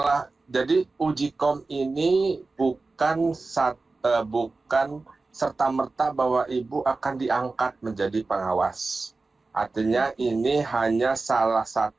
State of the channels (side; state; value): left; quieter; 3.6 dB